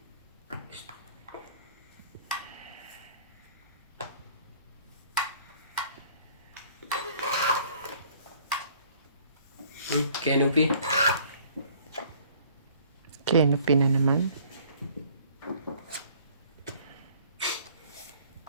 Canopy. Canopy na naman.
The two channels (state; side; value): inverted; both; correlation -0.56